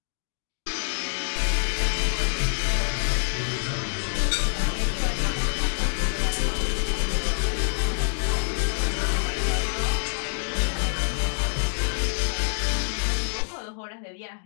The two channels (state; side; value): silent; right; digital silence